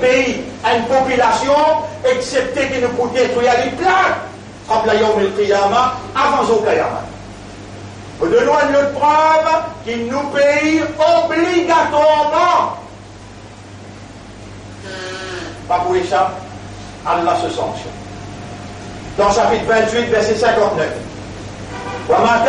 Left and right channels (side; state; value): both; identical; correlation 1.00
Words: pays, une population, excepté que nous pouvons détruire les plaques, comme la Yom el-Qiyamah, avant au Qiyamah. Nous donnons une autre preuve qui nous paye obligatoirement. Pas pour échapper, Allah se sanctionne. Dans chapitre 28, verset 59. وَمَا